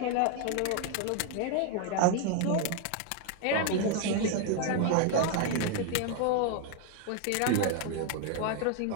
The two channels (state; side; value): different; both; correlation 0.01